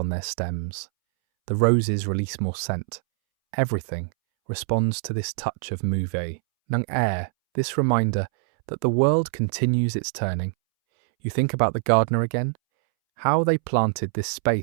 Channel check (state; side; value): silent; left; 62 dB below the other